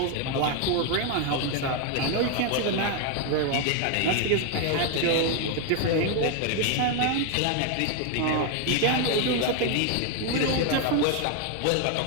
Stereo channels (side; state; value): both; different; correlation 0.01